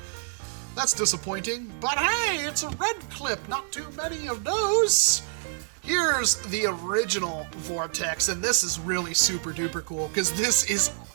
that's disappointing. But hey, it's a red clip, not too many of those. Here's the original Vortex, and this is really super duper cool because this is,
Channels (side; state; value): left; silent; digital silence